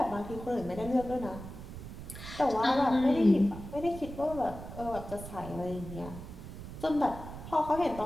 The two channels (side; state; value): right; noise; rumble, 11 dB below the sound